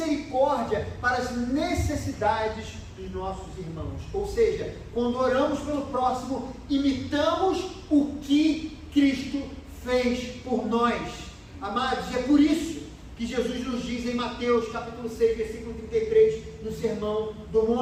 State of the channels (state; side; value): identical; both; correlation 1.00